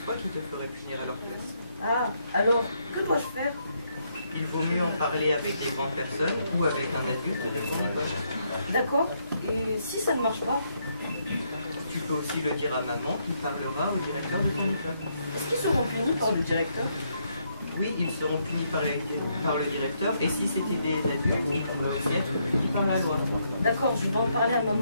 toi qui te ferais punir à leur place. Ah, alors, que dois-je faire? Il vaut mieux en parler avec des grandes personnes ou avec un adulte de ton école. D'accord. Et si ça ne marche pas? Tu peux aussi le dire à maman qui parlera au directeur de ton école. Est-ce qu'ils seront punis par le directeur? Oui, ils seront punis par le directeur, et si c'était des adultes, ils pourraient aussi être punis par la loi. D'accord, je vais en parler à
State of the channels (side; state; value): both; inverted; correlation -0.75